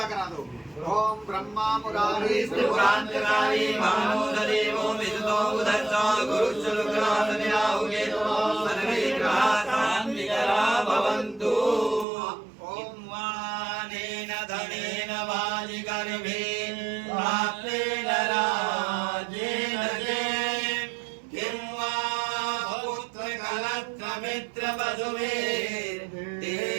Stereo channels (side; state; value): left; drops out; at 12.1 s